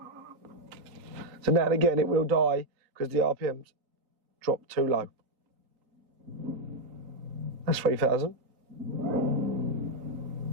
So now and again it will die because the RPMs dropped too low. That's 3,000.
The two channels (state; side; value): late; left; 3.8 ms